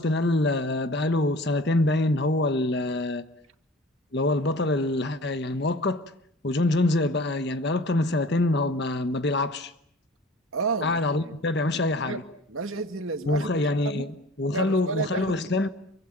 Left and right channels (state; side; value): normal; both; correlation 0.44